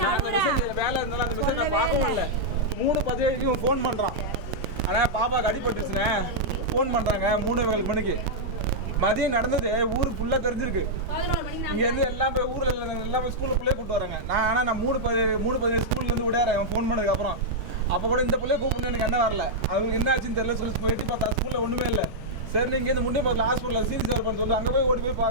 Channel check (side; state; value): both; normal; correlation -0.07